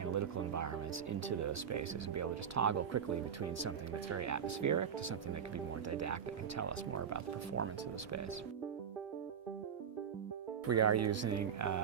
environments into those spaces and be able to just toggle quickly between something that's very atmospheric to something that can be more didactic and tell us more about the performance of the space. We are using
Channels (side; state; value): left; quieter; 7.7 dB